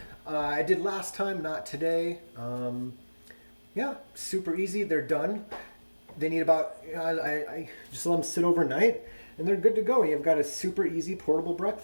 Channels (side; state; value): both; inverted; correlation -1.00